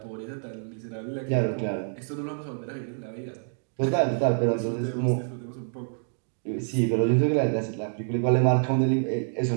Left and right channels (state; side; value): silent; left; digital silence